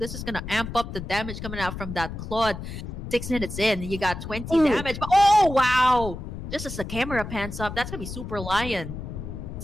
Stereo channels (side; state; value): left; noise; rumble, 8 dB below the sound